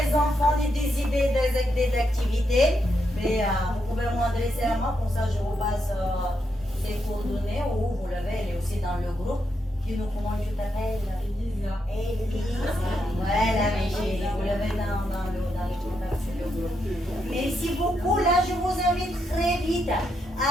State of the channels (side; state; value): both; normal; correlation 0.81